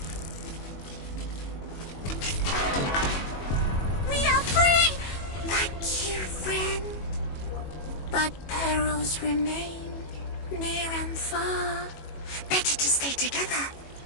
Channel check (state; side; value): late; right; 21 ms